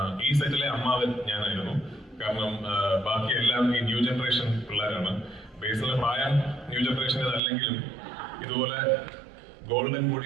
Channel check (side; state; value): left; drops out; at 7.4 s